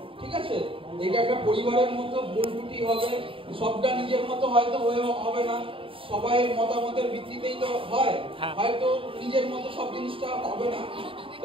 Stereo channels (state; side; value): late; left; 0.26 ms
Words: ঠিক আছে, এটা একটা পরিবারের মতো, ভুল ত্রুটি হবে, সবটা নিজের মতো হয়তো হবে না, সবাই মতামতের ভিত্তিতেই তো হয়, হয়তো নিজের মতো সব জিনিসটা হবে না, তো